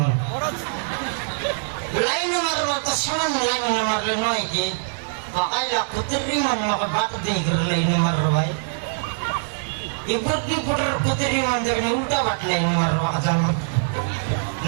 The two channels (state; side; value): silent; left; digital silence